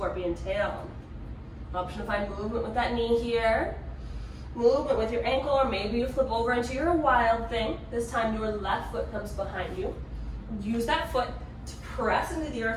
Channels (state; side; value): identical; both; correlation 1.00